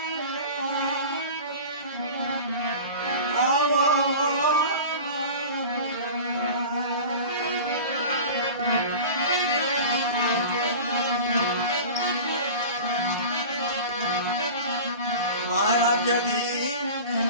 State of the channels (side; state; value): both; inverted; correlation -0.35